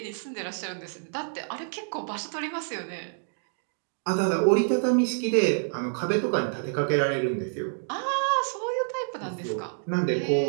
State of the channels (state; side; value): silent; left; digital silence